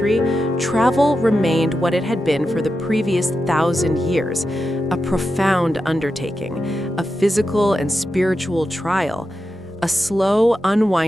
travel remained what it had been for the previous 1,000 years, a profound undertaking, a physical and spiritual trial, a slow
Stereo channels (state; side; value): normal; both; correlation 0.89